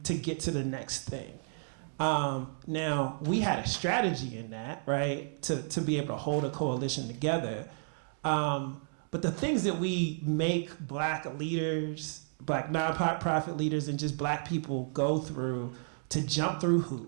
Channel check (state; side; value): silent; left; digital silence